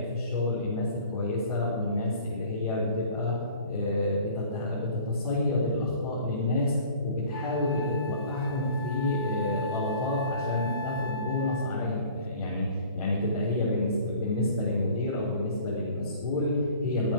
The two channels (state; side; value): inverted; both; correlation -0.48